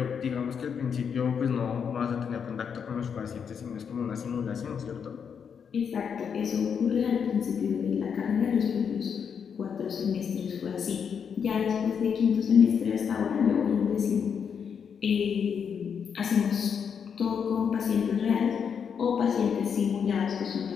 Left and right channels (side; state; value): right; quieter; 7.0 dB